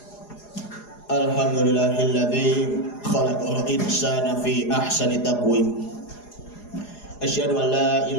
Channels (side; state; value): right; late; 4.8 ms